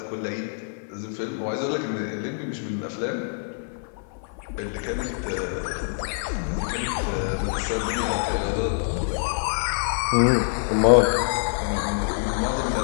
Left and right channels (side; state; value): right; silent; 56 dB below the other